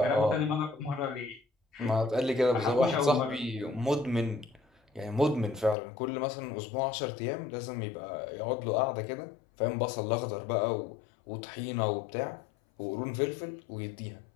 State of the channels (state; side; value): drops out; right; at 5.8 s